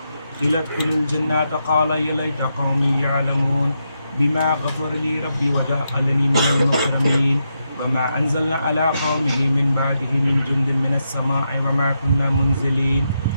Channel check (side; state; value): both; inverted; correlation -0.83